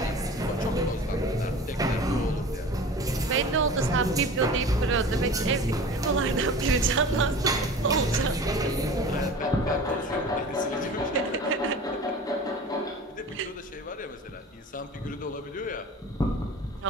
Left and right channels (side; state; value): both; normal; correlation 0.38